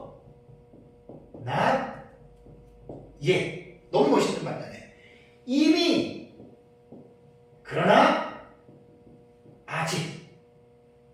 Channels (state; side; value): identical; both; correlation 1.00